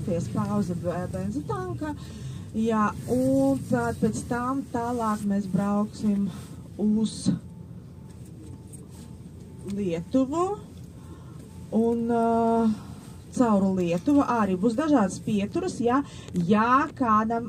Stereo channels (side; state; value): both; identical; correlation 1.00